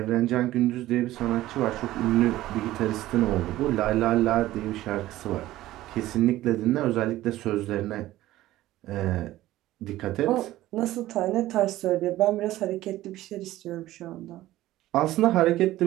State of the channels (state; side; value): quieter; left; 15.6 dB